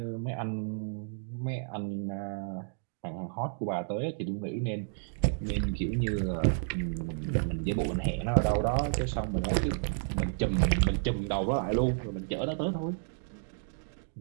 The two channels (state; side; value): silent; left; digital silence